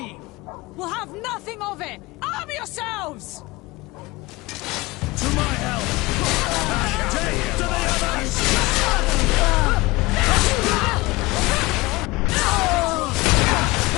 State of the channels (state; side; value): quieter; right; 21.8 dB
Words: We'll have nothing of it. Arm yourselves! To my help! Take to the others!